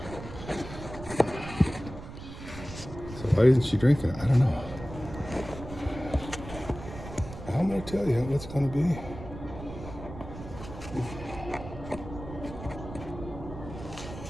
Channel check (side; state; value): right; noise; rumble, 12 dB below the sound